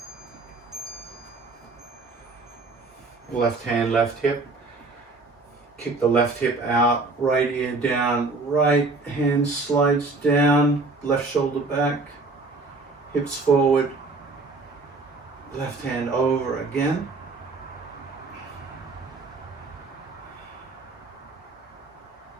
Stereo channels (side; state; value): left; quieter; 3.6 dB